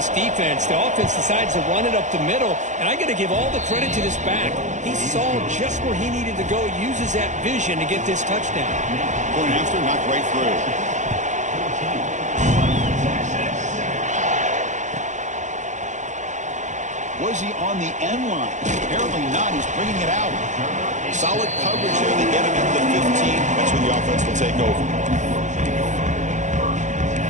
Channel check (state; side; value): late; left; 0.35 ms